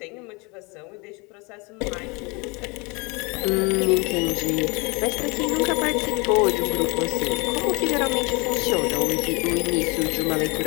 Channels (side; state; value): right; quieter; 28.7 dB